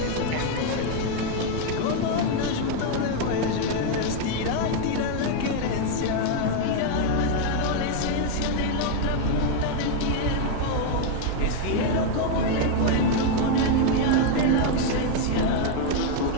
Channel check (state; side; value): different; both; correlation 0.01